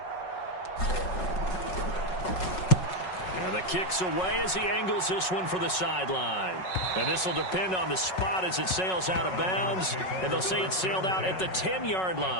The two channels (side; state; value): right; late; 5.4 ms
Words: And the kick's away as he angles this one for the sideline. And this will depend on the spot as it sails out of bounds. And they'll say it sailed out at the 10-yard